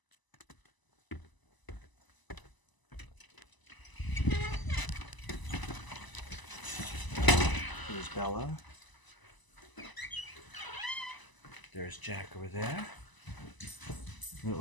There's Bella. There's Jack over there. A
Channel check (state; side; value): late; right; 1.0 ms